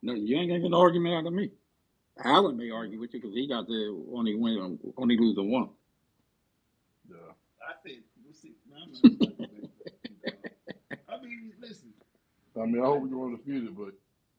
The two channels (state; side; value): identical; both; correlation 1.00